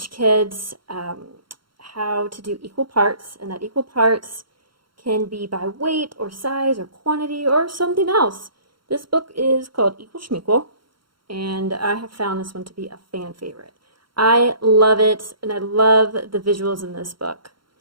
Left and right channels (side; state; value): left; late; 0.73 ms